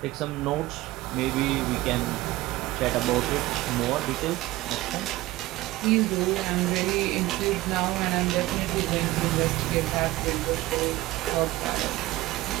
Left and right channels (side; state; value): left; quieter; 18.0 dB